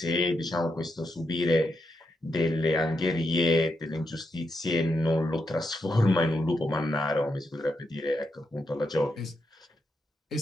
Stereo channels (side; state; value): both; normal; correlation 0.83